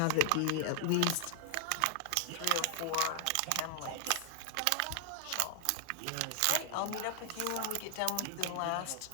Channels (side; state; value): both; different; correlation 0.00